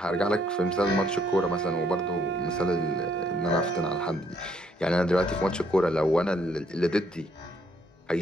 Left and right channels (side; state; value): both; normal; correlation 0.70